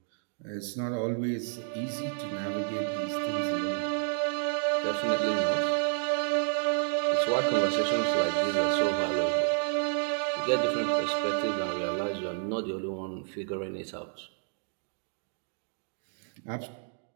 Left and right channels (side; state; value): left; silent; digital silence